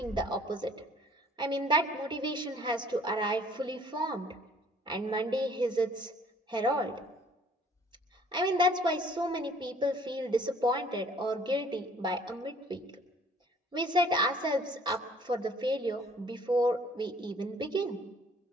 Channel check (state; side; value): normal; both; correlation 0.56